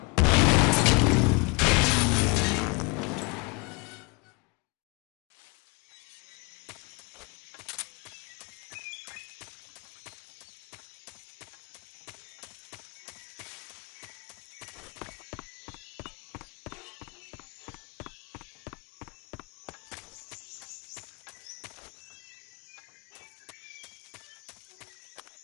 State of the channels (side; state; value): right; quieter; 30.7 dB